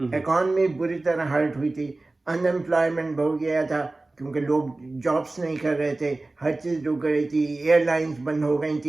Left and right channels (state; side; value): quieter; left; 3.1 dB